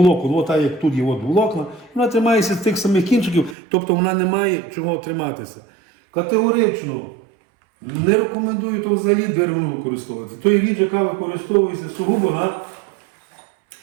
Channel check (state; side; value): drops out; left; at 3.6 s